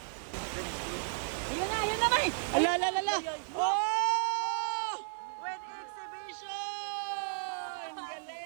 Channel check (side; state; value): left; silent; digital silence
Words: Ayun na, May. Ala, ala, ala, ala. Oh! With exhibition!